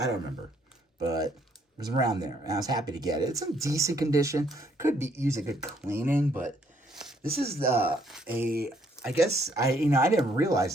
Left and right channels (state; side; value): normal; both; correlation 0.68